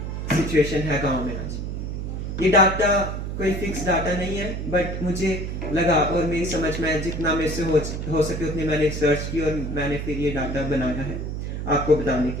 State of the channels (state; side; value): noise; right; hum, 4 dB below the sound